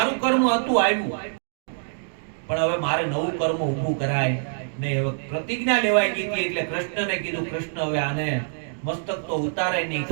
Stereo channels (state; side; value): silent; left; digital silence